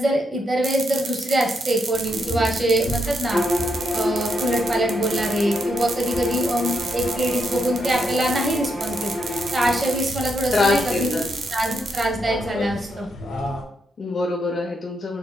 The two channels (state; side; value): normal; both; correlation 0.79